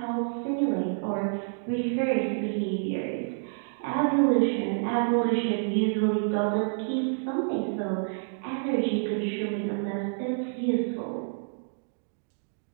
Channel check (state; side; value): silent; left; digital silence